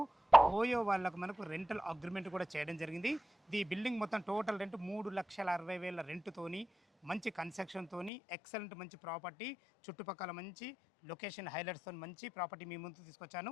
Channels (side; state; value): right; drops out; at 8.1 s